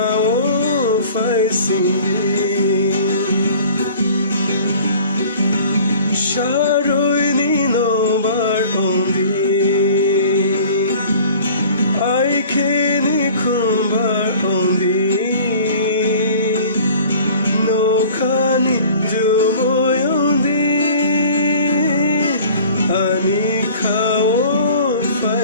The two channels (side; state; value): both; inverted; correlation -0.47